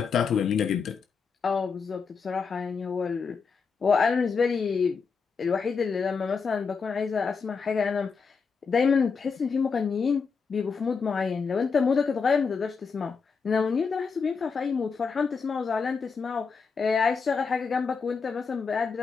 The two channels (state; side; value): quieter; right; 5.4 dB